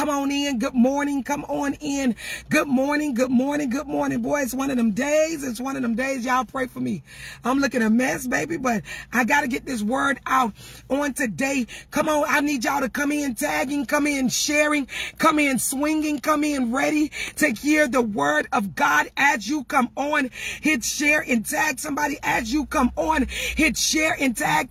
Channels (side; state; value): both; identical; correlation 1.00